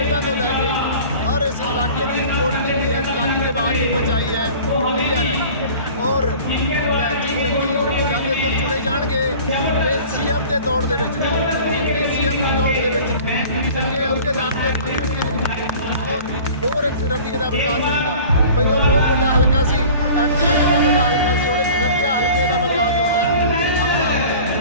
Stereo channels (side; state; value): both; inverted; correlation -0.43